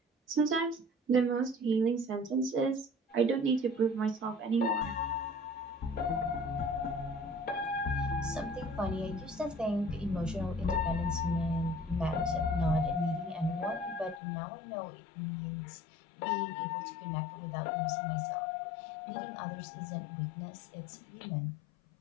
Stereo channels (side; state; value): right; drops out; at 14.2 s